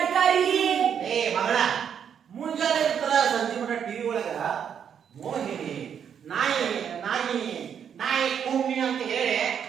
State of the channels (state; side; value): quieter; left; 8.1 dB